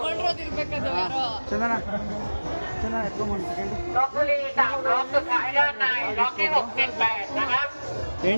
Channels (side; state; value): both; inverted; correlation -1.00